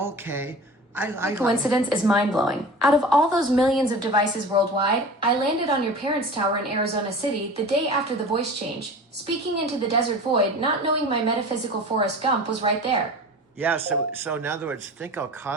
The coincidence is mind-blowing. Out of all those millions of devices worldwide, I landed on your parents' tower in Arizona City the day after the voice change, speaking into the desert void, not knowing my metaphysical Forrest Gump was right there. Yeah, so in other words, think how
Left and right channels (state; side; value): normal; both; correlation 0.37